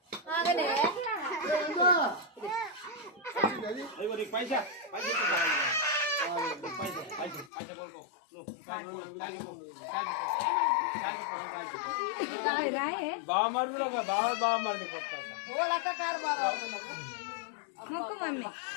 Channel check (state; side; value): drops out; right; at 7.5 s